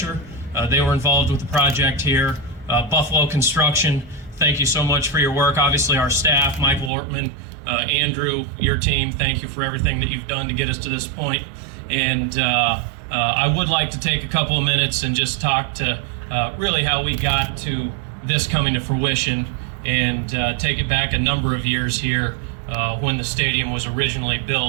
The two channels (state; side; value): drops out; left; at 6.9 s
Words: They were involved with the project here. Buffalo Construction, thank you so much for your work. Obviously our staff, Michael Ortman, Andrew, your team, thank you for everything that you've done to get us to this point. And I would like to take a couple of minutes and just talk to really how we got to this coming to fruition and take it back a number of years here when the stadium was originally